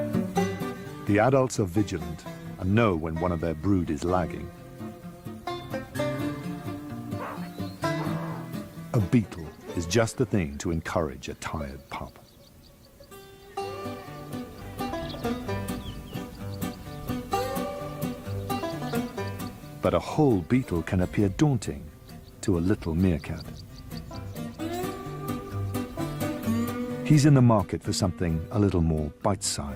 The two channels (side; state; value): both; identical; correlation 1.00